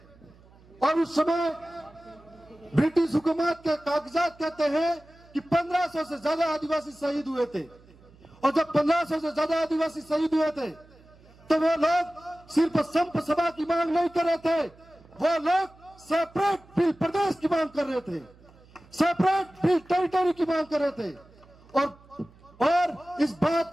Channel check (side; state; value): right; noise; hum, 26 dB below the sound